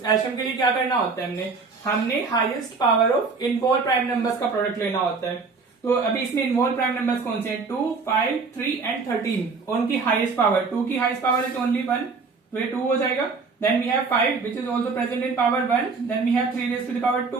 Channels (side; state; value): left; quieter; 4.5 dB